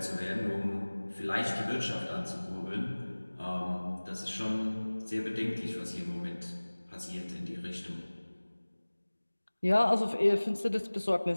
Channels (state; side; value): inverted; both; correlation -1.00